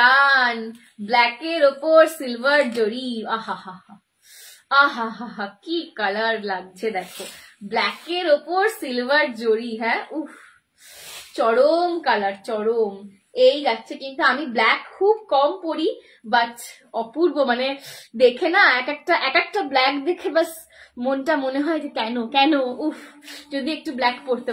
ব্ল্যাকের ওপর সিলভার জড়ি। আহা হা হা, আহা হা হা, কি কালার লাগছে দেখো, ব্ল্যাকের ওপর সিলভার জড়ি। হ্যাঁ, উফ, চরম কালার, চরম। এই যাচ্ছে কিন্তু, আমি ব্ল্যাক খুব কম পরি, বাট অপূর্ব, মানে দেখে না এক একটা ব্ল্যাক দেখে বাস মনটা মনে হয় যে কেন কেন, উফ, যদি একটু ব্ল্যাক পরতে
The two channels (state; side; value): identical; both; correlation 1.00